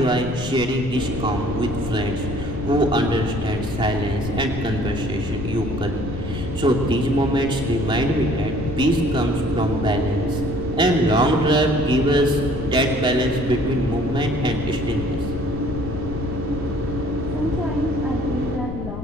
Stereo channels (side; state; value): left; noise; rumble, 8 dB below the sound